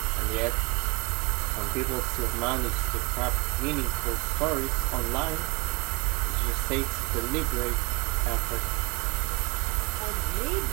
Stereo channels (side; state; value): left; quieter; 28.4 dB